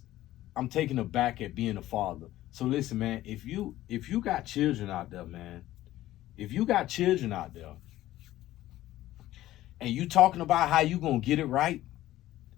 taken aback at being a father. So listen, man, if you got children out there, man, if you got children out there, and you talking about how you gonna get it right,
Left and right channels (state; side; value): quieter; right; 14.9 dB